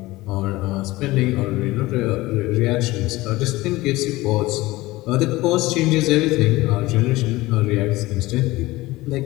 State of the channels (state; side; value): quieter; right; 19.3 dB